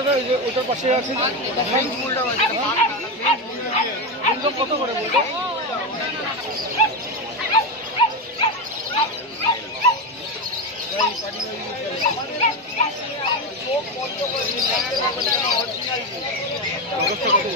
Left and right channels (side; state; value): both; normal; correlation 0.13